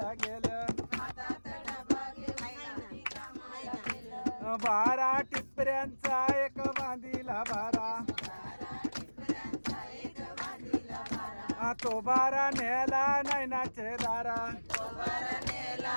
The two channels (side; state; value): both; inverted; correlation -1.00